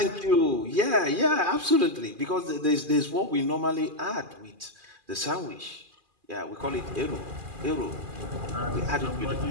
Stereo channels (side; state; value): left; late; 2.4 ms